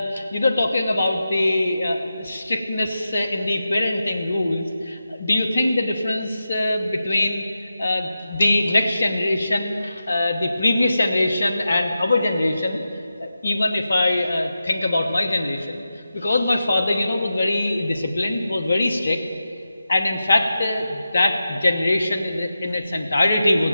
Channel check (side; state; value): both; inverted; correlation -0.91